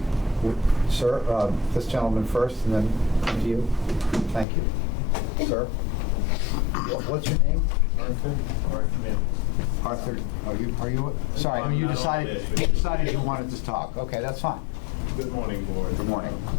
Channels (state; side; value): drops out; right; at 4.5 s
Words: Sir, this gentleman first, and then come to you. Thank you. Sir? What's your name? Arthur. Arthur, are you, sorry, you decided you wanted to talk. Okay, that's fine. Good morning, board. Good morning.